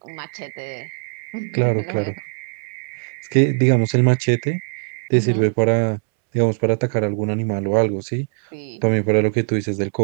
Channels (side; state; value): left; silent; 65 dB below the other